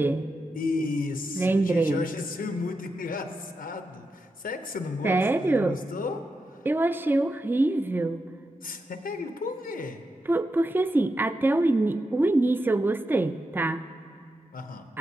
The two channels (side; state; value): both; normal; correlation 0.87